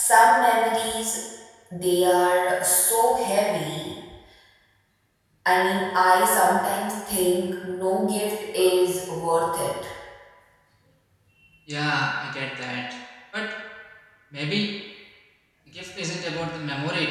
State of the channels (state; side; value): identical; both; correlation 1.00